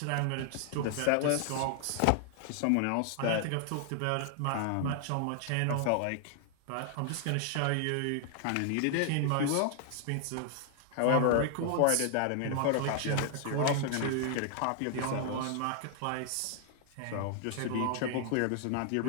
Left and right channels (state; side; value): different; both; correlation 0.00